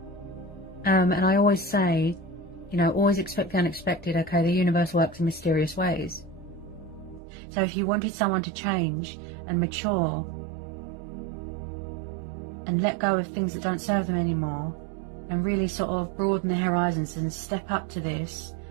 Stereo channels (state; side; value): drops out; left; at 7.2 s